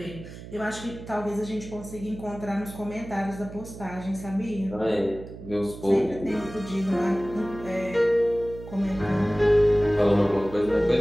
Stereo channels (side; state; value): right; noise; hum, 14 dB below the sound